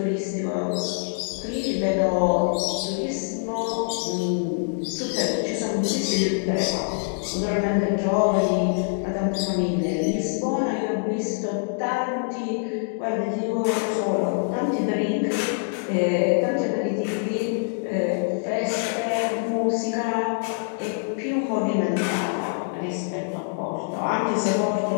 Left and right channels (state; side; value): silent; right; digital silence